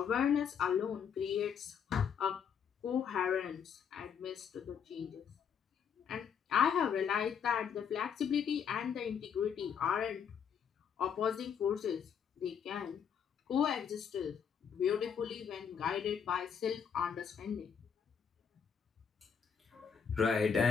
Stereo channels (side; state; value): right; quieter; 7.3 dB